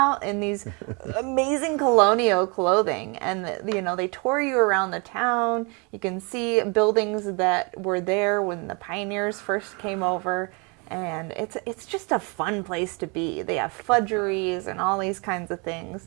in these amazing colonial clothing, and you know, they tour you around the town. You can see buildings that were there when the pioneers first came over. And it's just a fun place to be. They have fudgeries and all these kinds of things.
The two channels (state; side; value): quieter; left; 31.7 dB